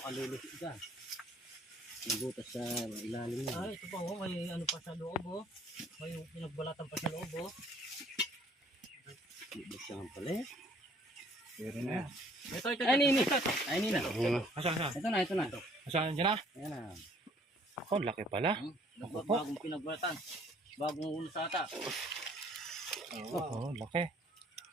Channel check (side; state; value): both; normal; correlation 0.59